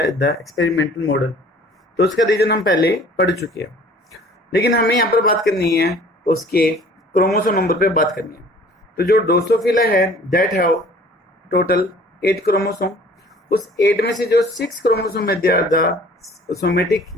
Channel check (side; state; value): both; normal; correlation 0.51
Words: the experimental model. तो उसका रीजन हम पहले पढ़ चुके हैं, लेकिन हमें यहाँ पर बात करनी है उसके क्रोमोसोम नंबर पे बात करनी है। तो जो ड्रोसोफिला है दैट हैव टोटल 8 क्रोमोसोम। उस 8 में से जो 6 क्रोमोसोम है दे आर द सोमेटिक